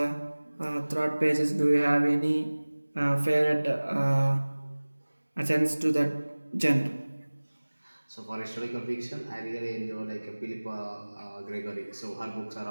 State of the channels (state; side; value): inverted; both; correlation -1.00